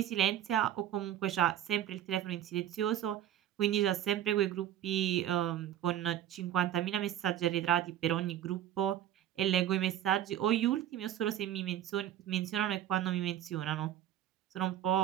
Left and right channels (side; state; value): left; quieter; 11.5 dB